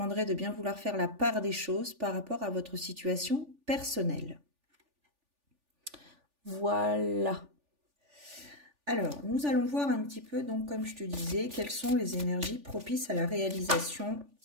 de bien vouloir faire la part des choses par rapport à votre situation personnelle. Voilà. Alors, nous allons voir un petit peu, donc comme je te disais, quelles sont les énergies propices à la réalisation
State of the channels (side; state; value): left; late; 3.4 ms